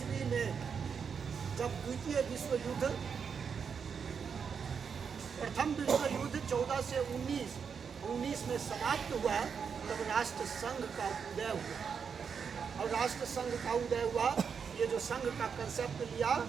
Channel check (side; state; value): left; quieter; 6.4 dB